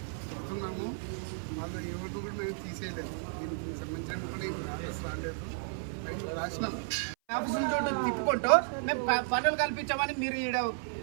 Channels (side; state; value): left; silent; 56 dB below the other